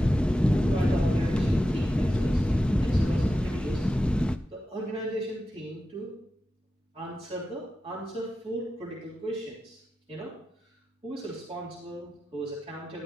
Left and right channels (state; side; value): normal; both; correlation 0.92